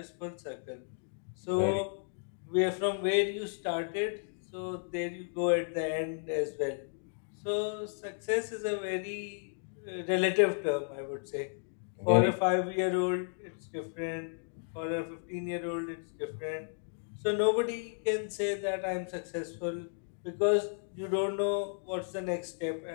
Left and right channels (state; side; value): silent; right; digital silence